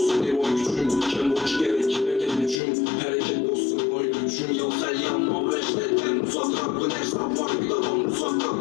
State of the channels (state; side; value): drops out; right; at 2.6 s